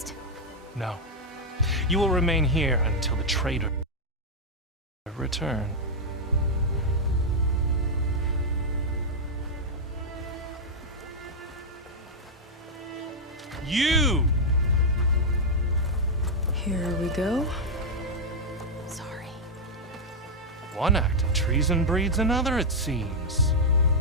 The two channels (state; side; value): normal; both; correlation -0.03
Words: No. You will remain here until the traitor return. You! Here we go. Sorry. One act of treason breeds another, it seems.